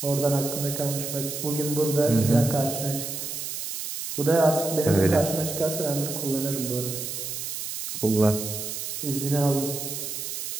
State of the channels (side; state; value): right; noise; hiss, 5 dB below the sound